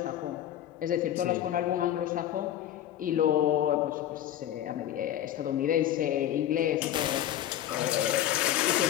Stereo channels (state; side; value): quieter; right; 11.9 dB